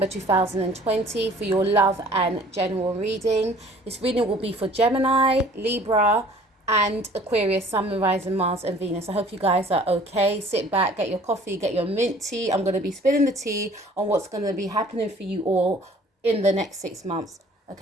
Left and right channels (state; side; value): normal; both; correlation 0.52